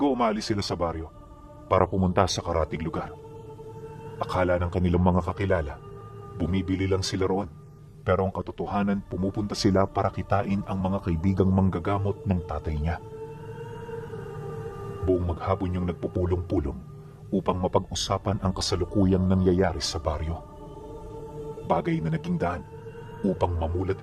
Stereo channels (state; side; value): identical; both; correlation 1.00